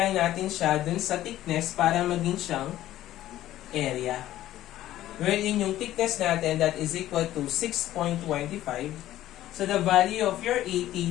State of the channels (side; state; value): right; quieter; 13.8 dB